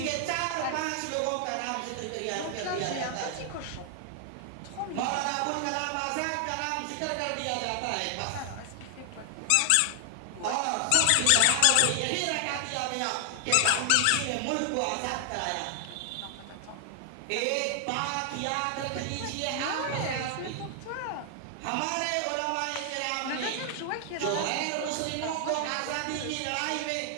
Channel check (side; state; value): both; different; correlation 0.00